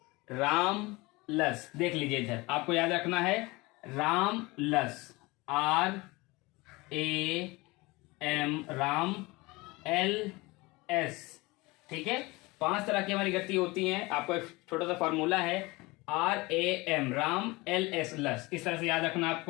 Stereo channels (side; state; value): right; quieter; 23.2 dB